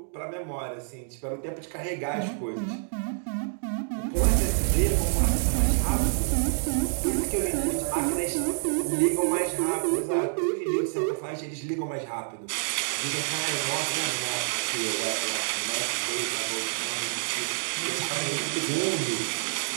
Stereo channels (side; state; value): left; silent; digital silence